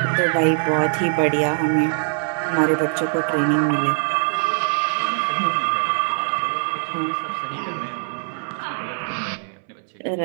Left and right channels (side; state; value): left; silent; 64 dB below the other